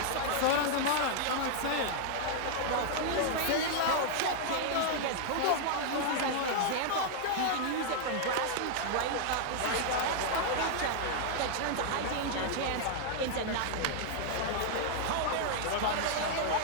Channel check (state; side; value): different; both; correlation 0.00